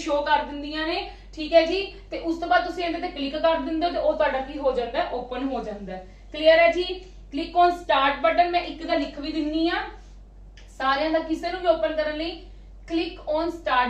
ਕਰ ਦਿੰਦੀਆਂ ਨੇ, ਠੀਕ ਹੈ ਜੀ। ਤੇ ਉਸ ਤੋਂ ਬਾਅਦ ਤੁਸੀਂ ਇਹਦੇ ਤੇ ਕਲਿੱਕ ਕਰ ਦਿੰਦੇ ਹੋ ਤੇ ਉਹ ਤੁਹਾਡਾ ਕੀ ਹੋ ਜਾਂਦਾ ਹੈ, ਓਪਨ ਹੋ ਜਾਂਦਾ ਹੈ। ਕਲੀਅਰ ਹੈ ਜੀ। ਕਲਿੱਕ ਔਨ ਸਟਾਰਟ ਬਟਨ, ਮੈਂ ਇੱਕ ਦਾ ਲਿਖ ਵੀ ਦਿੰਨੀ ਆ ਸਾਰਿਆਂ ਦਾ, ਕਿਸੇ ਨੂੰ ਵੀ ਓਪਨ ਕਰਨ ਲਈ। Click on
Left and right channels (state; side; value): identical; both; correlation 1.00